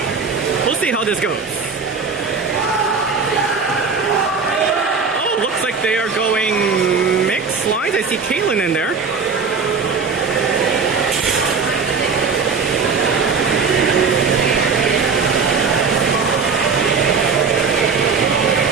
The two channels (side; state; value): left; quieter; 5.1 dB